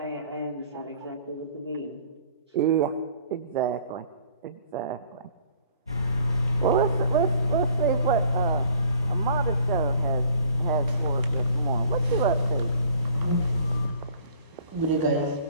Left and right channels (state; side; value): inverted; both; correlation -0.55